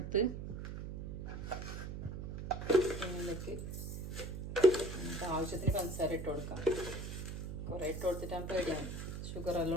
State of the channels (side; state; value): right; noise; hum, 6 dB below the sound